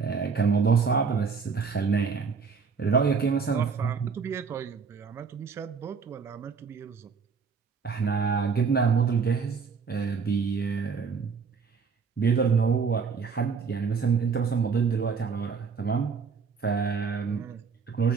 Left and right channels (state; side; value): quieter; left; 5.6 dB